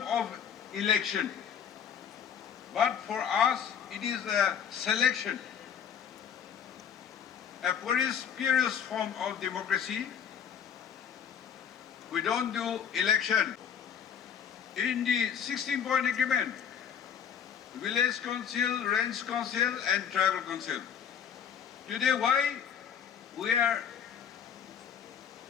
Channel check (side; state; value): right; quieter; 8.2 dB